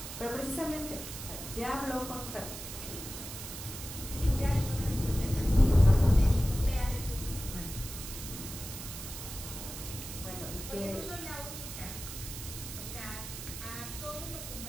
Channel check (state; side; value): noise; right; hiss, 9 dB below the sound